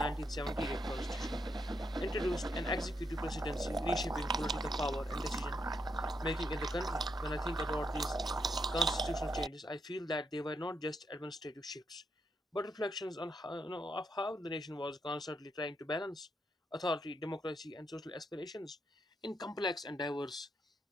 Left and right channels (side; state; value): both; normal; correlation 0.79